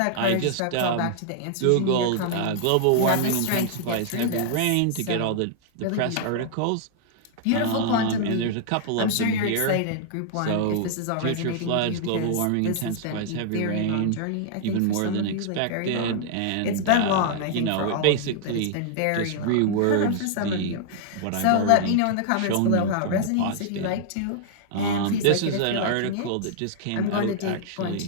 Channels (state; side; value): different; both; correlation -0.01